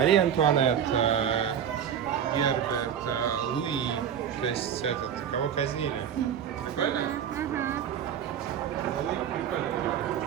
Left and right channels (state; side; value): quieter; left; 8.7 dB